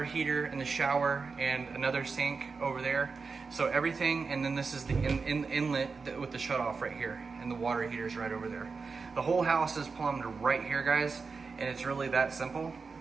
heater and the shower and another sink over there. So everything, and then this is the inlet with the shutoff right here, and the water heater's right over there. The whole house is plumbed right here, guys, and it's really that simple.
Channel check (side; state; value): left; quieter; 4.8 dB